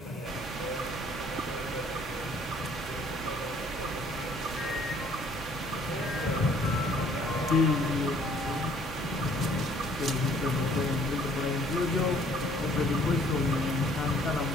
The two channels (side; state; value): both; normal; correlation 0.59